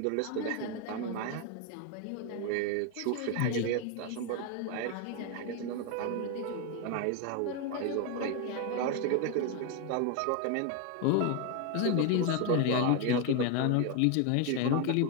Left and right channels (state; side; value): different; both; correlation 0.01